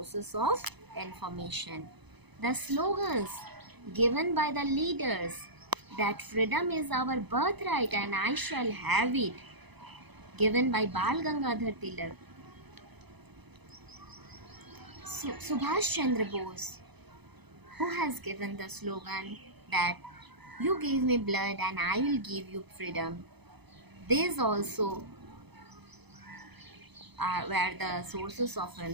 of information. The slogans given by the leaders, that freedom is our birthright and I shall have it, given by Bal Gangadhar Tilak. Subhash Chandra Bose, who has given the slogan that you give me blood and I will give you freedom. These also were the sources of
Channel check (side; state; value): left; late; 0.99 ms